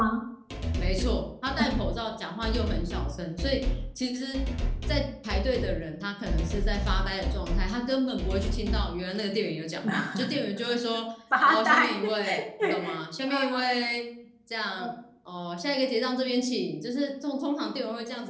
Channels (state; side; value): identical; both; correlation 1.00